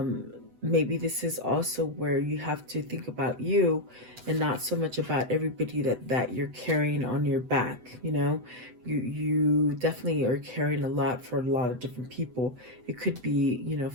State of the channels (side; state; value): left; late; 8.0 ms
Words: maybe this is also where you have to think about you and not so much about everybody that you're carrying on your back. You know, you definitely are carrying a lot for a lot of different people. It could be, you know,